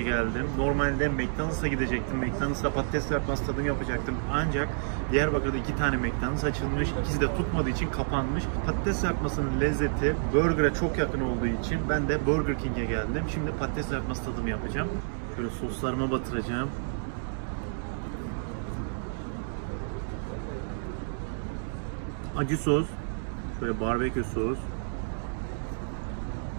geldim. Normalde McDonald's'a gidecektim. McDonald's'ta patates kızartması tadım yapacaktım. Ancak Diyarbakır'da 2 tane McDonald's açılmış. İkisi de tutmadığı için kapanmış. Patates kızartmasının lezzeti burger'a çok yakın olduğu için ben de Burger King'e geldim. Şimdi patates kızartması tadımı yapacağım. Şöyle soslarıma batıracağım. Acı sos, şöyle barbekü sos,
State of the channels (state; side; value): silent; left; digital silence